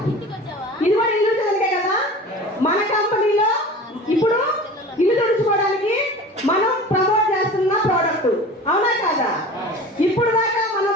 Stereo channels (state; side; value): normal; both; correlation 0.38